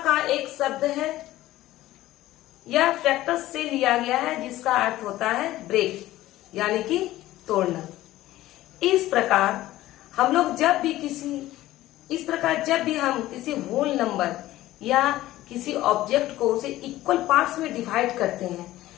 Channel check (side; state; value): right; quieter; 15.6 dB